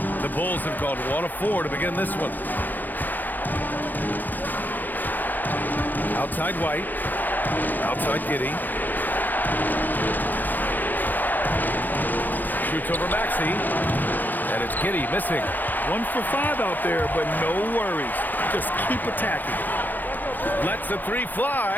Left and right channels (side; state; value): right; late; 0.086 ms